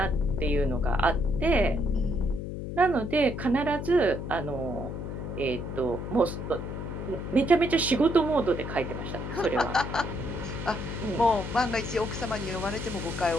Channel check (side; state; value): left; noise; hum, 6 dB below the sound